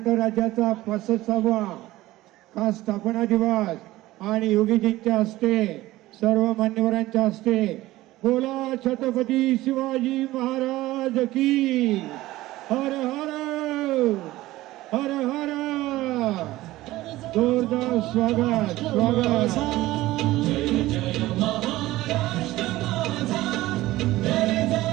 राज्याचा 65वा खास स्थापना दिवस आणि योगीजींच्या हस्ते सर्व मान्यवरांच्या हस्ते बोला छत्रपती शिवाजी महाराज की हर हर हर हर। जोरदार स्वागत स्वागत।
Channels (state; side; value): quieter; left; 17.1 dB